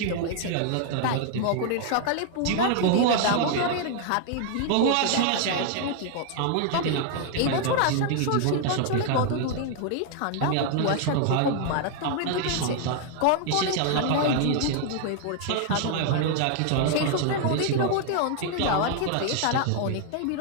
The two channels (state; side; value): different; both; correlation 0.00